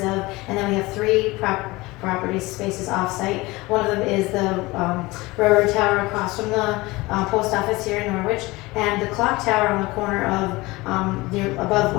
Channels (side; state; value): right; quieter; 21.5 dB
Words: of, and then we have 3 property spaces off-site. One of them is the railroad tower across from the post office here in Norwich, and the clock tower on the corner of above